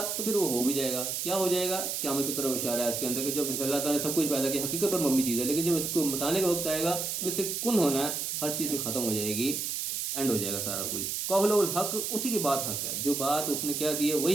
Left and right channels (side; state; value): right; noise; hiss, 2 dB below the sound